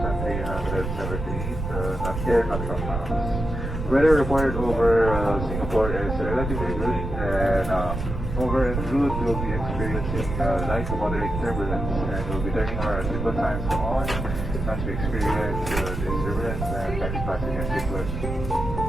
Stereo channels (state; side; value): noise; right; rumble, 5 dB below the sound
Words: air miles. Weather reported over Singapore is relatively good, and over en route we'll be experiencing light to moderate turbulence, and we'll be turning our seatbelt signs on as we experience this turbulence and taxi passenger seatbelt